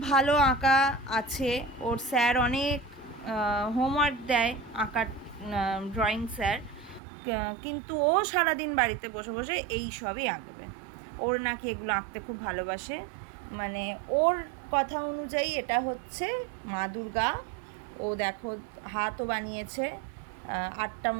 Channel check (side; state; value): left; drops out; at 7.0 s